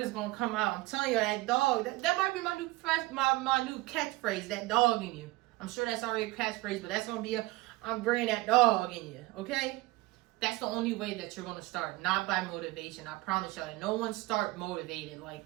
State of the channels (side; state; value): left; quieter; 20.7 dB